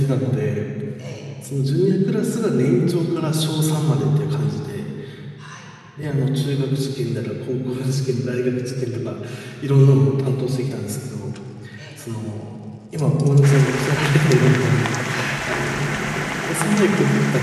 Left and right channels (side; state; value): both; identical; correlation 1.00